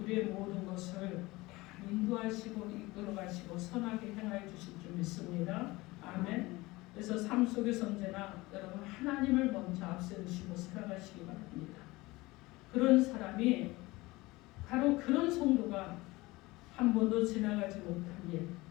모든 것을 다 인도하시고 이끌어가시고 선하게 행하여 주실 줄 믿습니다. 아멘. 그래서 삶 속에서 언제나 여러분 하나님을 먼저 앞세우시고 살아가시기 바랍니다. 그런 사람이 바로 그런 성도가 한 번도 지나가지 못한 일,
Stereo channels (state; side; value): quieter; right; 21.1 dB